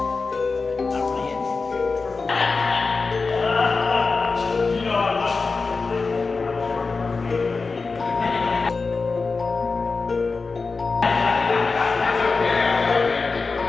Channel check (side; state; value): right; quieter; 4.3 dB